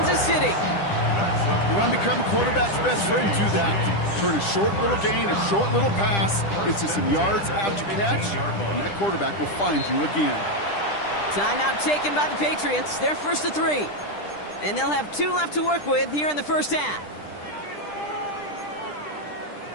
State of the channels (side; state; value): right; late; 10 ms